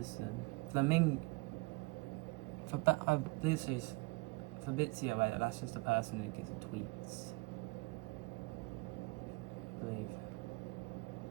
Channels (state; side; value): quieter; left; 26.6 dB